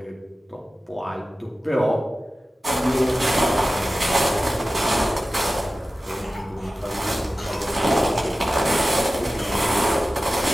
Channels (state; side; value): normal; both; correlation 0.95